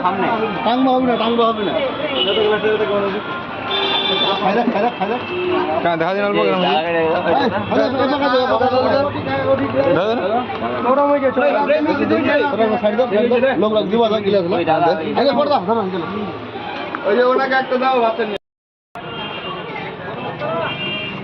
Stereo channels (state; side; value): identical; both; correlation 1.00